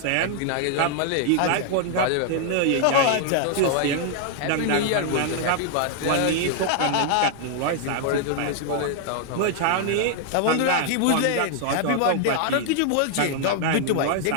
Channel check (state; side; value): different; both; correlation 0.00